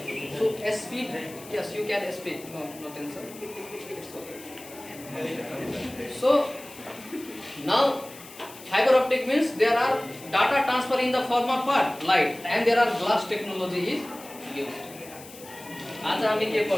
So speed, yes, you can speed. No tension. It's okay. So now fiber optic means there are data transfer in the form of what? Light. And there are glass technology is used. आज हामी के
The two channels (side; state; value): left; noise; hiss, 17 dB below the sound